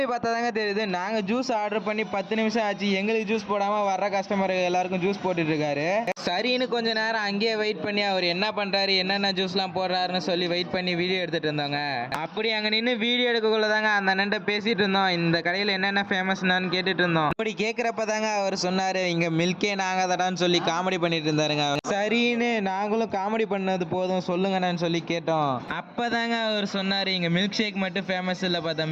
பார்த்தா தாங்க தெரியுது, நாங்கள் ஜூஸ் ஆர்டர் பண்ணி 10 நிமிஷம் ஆச்சு, எங்களுக்கு ஜூஸ் போடாமல் வர்ற கஸ்டமர் எல்லாருக்கும் ஜூஸ் போட்டுட்டு இருக்காரு. சரின்னு கொஞ்சம் நேரம் அங்கேயே வெயிட் பண்ணி அவர் என்ன பண்ணுறாரு, என்னென்ன ஜூஸ்லாம் போடுறாருன்னு சொல்லி வெயிட் பண்ணி வீடியோ எடுத்துகிட்டு இருந்தோங்க. அப்படி அங்கே நின்று வீடியோ எடுக்கக்குள்ள தாங்க அந்த அண்ணன்ட்ட பேசிகிட்டு இருந்தோம், இந்த கடையில் என்னென்ன ஃபேமஸ்னான்னு கேட்டுட்டு இருந்தோம். அப்படி கேட்குறப்ப தாங்க அவர் சொன்னாரு, இங்க மில்கே நாங்க தடான்னு சொல்லி காமெடி பண்ணிட்டு இருந்தாருங்க. சரின்னு நாங்களும் காமெடி பண்ணது போதும் சொல்லுங்கன்னு சொல்லி கேட்டோம். அப்பதாங்க அவர் சொன்னாரு, இங்க மில்க் ஷேக் மட்டும் ஃபேமஸ் இல்லப்பா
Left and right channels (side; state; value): both; identical; correlation 1.00